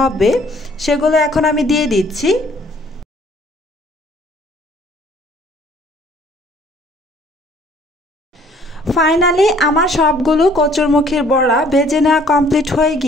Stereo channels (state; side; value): normal; both; correlation 0.58